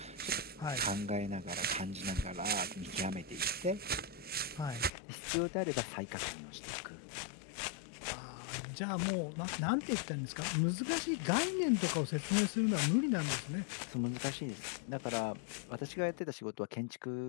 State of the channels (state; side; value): drops out; right; at 4.9 s